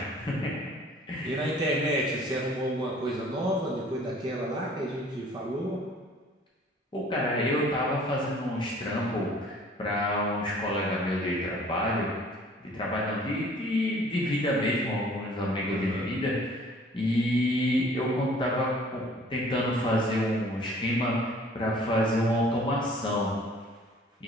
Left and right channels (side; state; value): both; normal; correlation 0.53